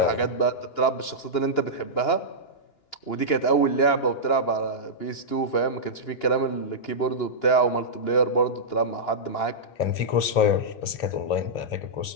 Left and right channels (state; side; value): late; right; 2.9 ms